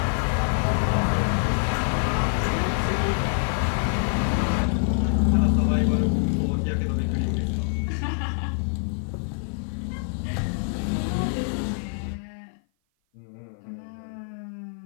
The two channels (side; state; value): right; silent; 56 dB below the other